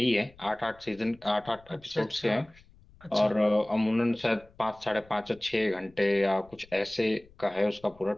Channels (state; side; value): noise; left; rumble, 27 dB below the sound